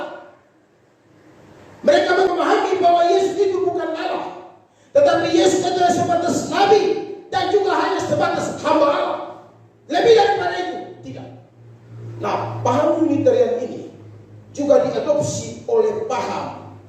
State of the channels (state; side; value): identical; both; correlation 1.00